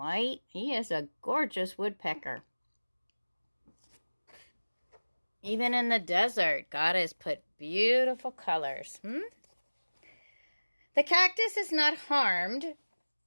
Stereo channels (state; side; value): inverted; both; correlation -1.00